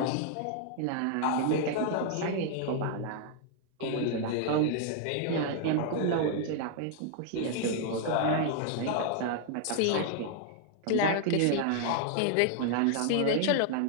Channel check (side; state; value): both; different; correlation 0.00